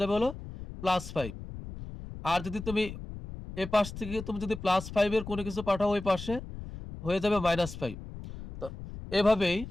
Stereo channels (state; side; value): noise; left; rumble, 11 dB below the sound